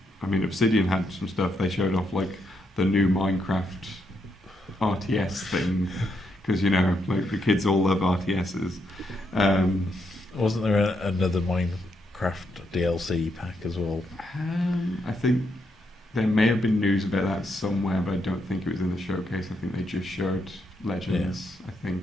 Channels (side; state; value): both; normal; correlation 0.79